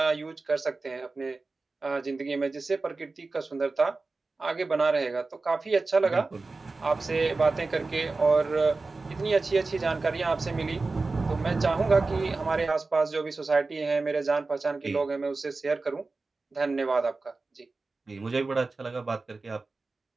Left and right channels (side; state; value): left; quieter; 3.7 dB